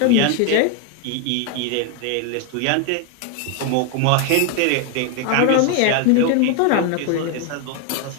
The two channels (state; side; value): different; both; correlation 0.01